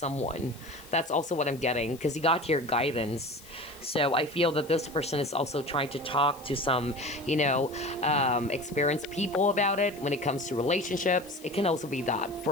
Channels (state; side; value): noise; left; hiss, 21 dB below the sound